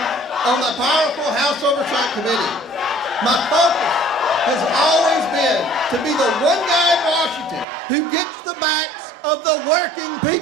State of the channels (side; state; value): left; drops out; at 7.7 s